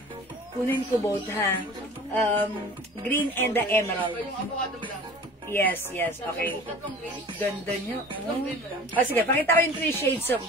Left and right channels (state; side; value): normal; both; correlation 0.42